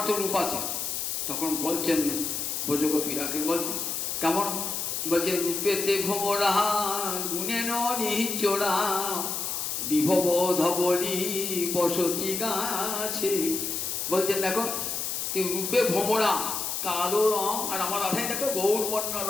তো রূপ আছে। তখন বলছেন ব্রজগোপীরাকে, বলছেন কেমন? বলছে, রূপেতে ভোমরা গুণে নিচোরা বিভব ধবলি বসতি গাছে। বলছেন, দেখো তুই রূপে ভোমরা, কালো রং, আর আমার রাধাই দেখো গৌরবর্ণ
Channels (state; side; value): noise; left; hiss, 2 dB below the sound